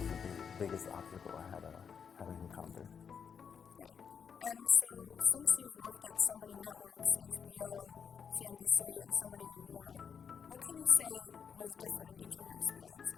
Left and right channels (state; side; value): quieter; right; 6.8 dB